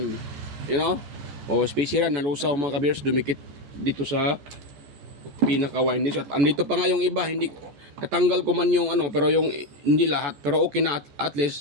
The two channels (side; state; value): left; late; 14 ms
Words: You know? O spacer nalusaw mga ka-viewers, dumikit dito sa pinaka windings. At andito pa nga yung iba, hindi natanggal ko man yung pero yung hindi lahat, pero okay na at